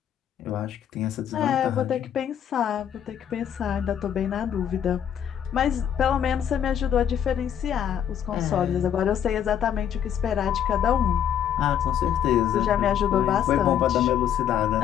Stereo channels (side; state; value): right; quieter; 9.3 dB